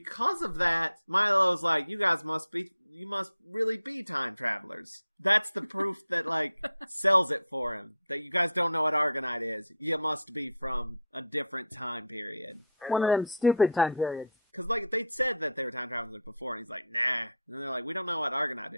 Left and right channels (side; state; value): both; inverted; correlation -0.58